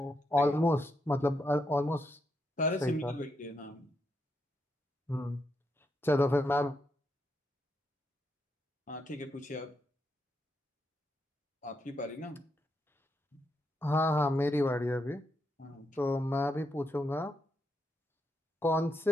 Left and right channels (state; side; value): normal; both; correlation 0.81